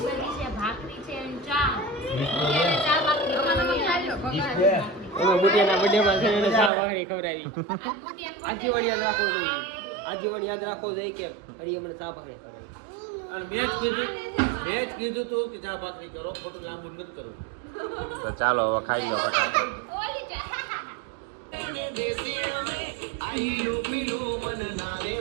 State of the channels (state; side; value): drops out; left; at 6.7 s